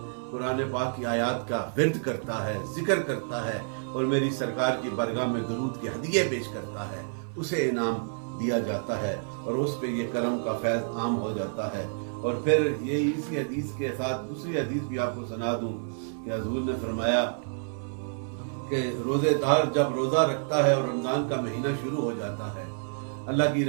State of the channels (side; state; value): left; silent; 59 dB below the other